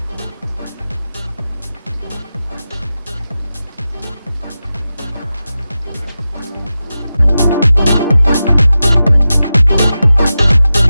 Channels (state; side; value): inverted; both; correlation -0.92